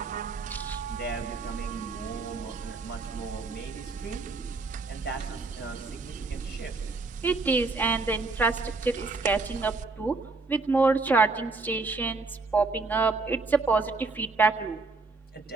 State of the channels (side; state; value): left; quieter; 3.8 dB